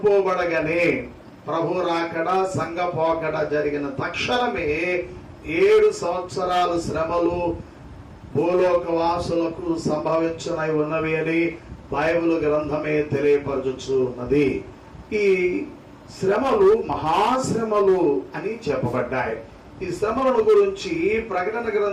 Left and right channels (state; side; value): identical; both; correlation 1.00